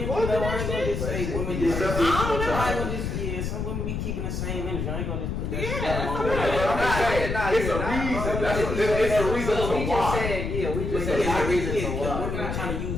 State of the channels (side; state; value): left; noise; rumble, 3 dB below the sound